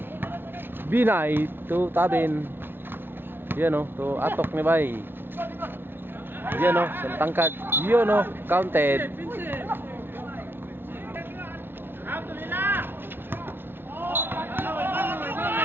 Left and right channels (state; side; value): late; left; 0.10 ms